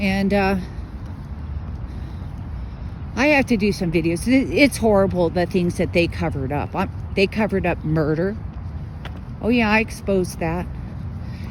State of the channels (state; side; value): identical; both; correlation 1.00